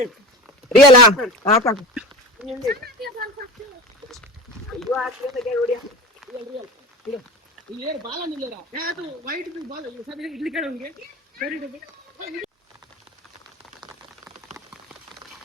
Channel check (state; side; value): normal; both; correlation 0.31